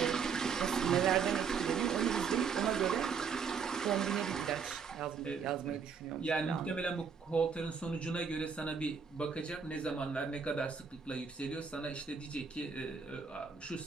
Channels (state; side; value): quieter; left; 6.1 dB